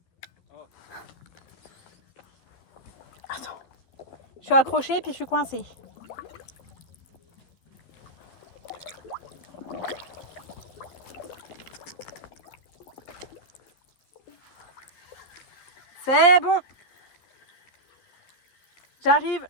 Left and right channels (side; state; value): right; late; 12 ms